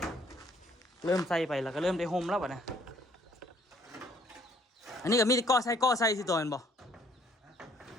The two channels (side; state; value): both; normal; correlation 0.62